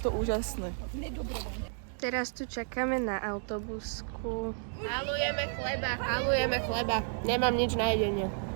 úžasné. Teraz tu čakáme na autobusku. Halujeme chleba. Nemám nič na jedenie.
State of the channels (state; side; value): silent; left; digital silence